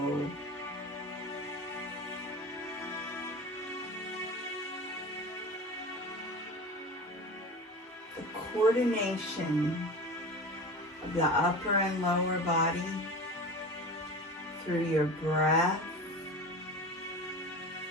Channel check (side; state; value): both; normal; correlation 0.32